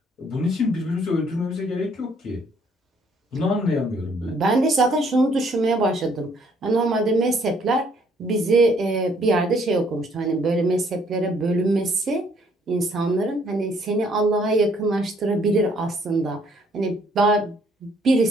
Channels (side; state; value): both; normal; correlation 0.65